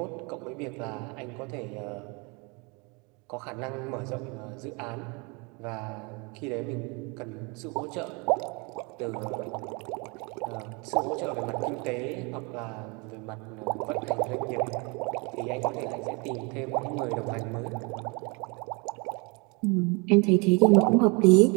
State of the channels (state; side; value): quieter; left; 30.0 dB